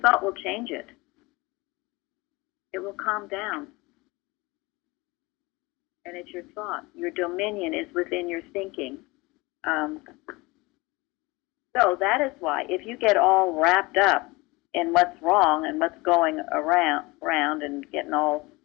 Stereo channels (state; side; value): quieter; right; 23.5 dB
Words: will change it. It will calm down. And it's your thought. Your dominion is within your thinking. So that is why, if you get all wrapped up in what's wrong and what's going around and getting all